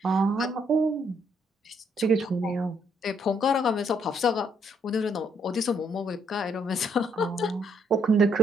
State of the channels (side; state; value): both; normal; correlation 0.70